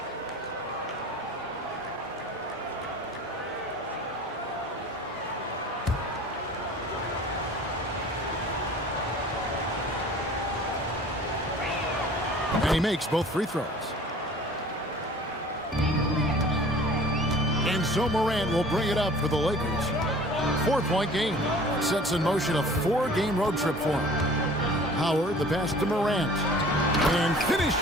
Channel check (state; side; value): normal; both; correlation 0.46